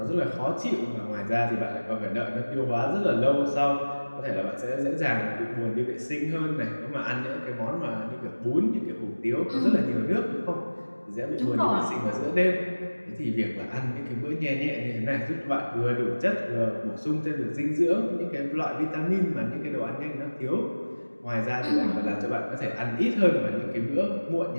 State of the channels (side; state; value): both; inverted; correlation -1.00